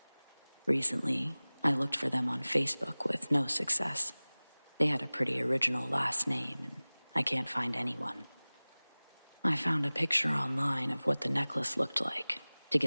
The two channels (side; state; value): both; inverted; correlation -1.00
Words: Recently, I looked for them on Facebook with no success. They had a pretty original last name, and I can't find anyone. I found a picture online of what the necklace looked like to